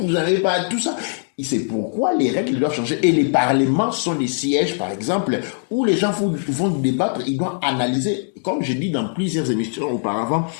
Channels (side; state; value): right; silent; digital silence